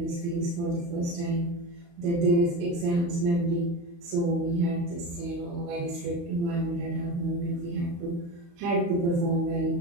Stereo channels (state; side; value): late; left; 35 ms